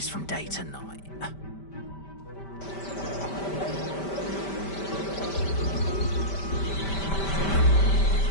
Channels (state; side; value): late; right; 5.1 ms